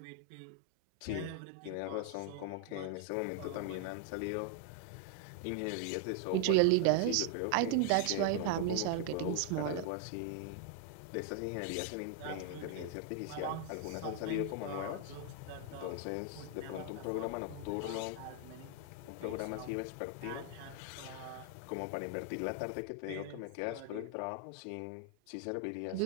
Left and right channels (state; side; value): different; both; correlation 0.00